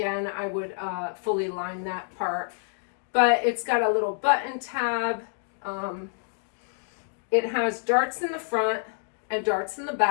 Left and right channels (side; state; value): right; silent; digital silence